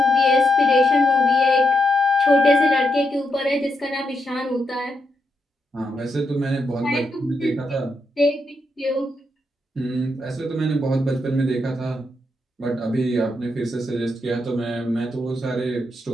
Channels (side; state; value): both; normal; correlation 0.81